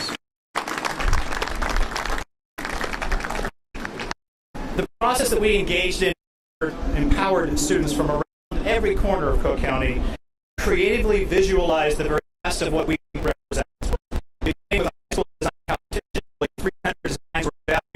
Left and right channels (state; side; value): identical; both; correlation 1.00